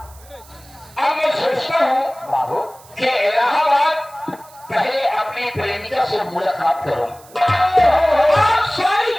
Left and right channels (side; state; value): right; noise; hiss, 24 dB below the sound